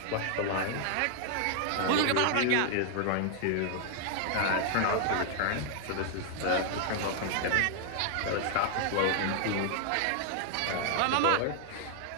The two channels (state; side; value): different; both; correlation 0.00